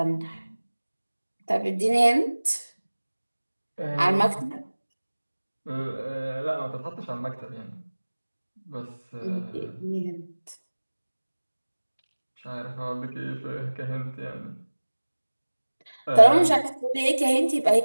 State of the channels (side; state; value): both; inverted; correlation -1.00